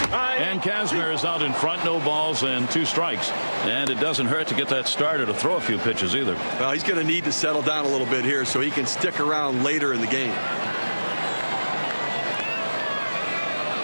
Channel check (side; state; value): both; inverted; correlation -1.00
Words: And Kazmir is out in front, no balls and 2 strikes. And it doesn't hurt to get that starter to throw a few pitches either. Well, he's going to need to settle down a little bit here so he can stick around later in the game.